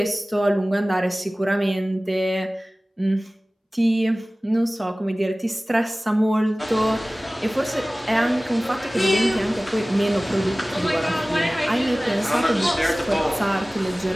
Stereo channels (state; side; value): normal; both; correlation 0.98